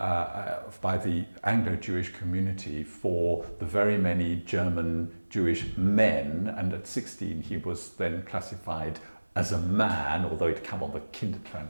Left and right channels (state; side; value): inverted; both; correlation -1.00